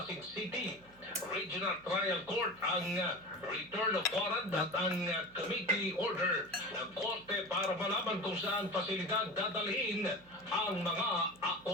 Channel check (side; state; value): right; noise; hum, 26 dB below the sound